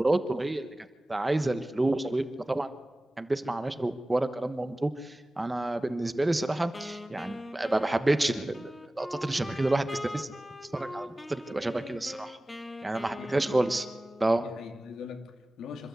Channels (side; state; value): both; normal; correlation 0.97